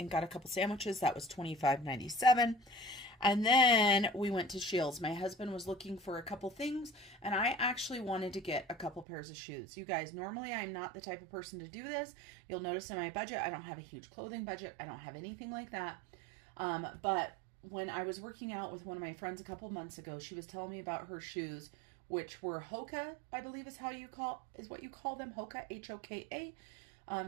got a couple sandwiches. That was $25.97. And then we went to Shields. My husband was looking for a couple things, and I actually wanted to get a couple pairs of shoes. You guys, normally I'm not the type of person to do this. You'll notice in my budget, I don't have a huge clothing budget. I don't have anything like that. But when I was working out with one of my friends a couple months ago, she was telling me about her shoes, which were Hoka, I believe is what you call them, Hoka, Hoka.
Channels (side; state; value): left; drops out; at 9.1 s